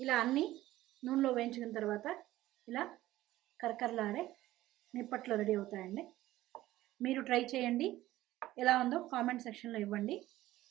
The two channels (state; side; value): quieter; left; 15.7 dB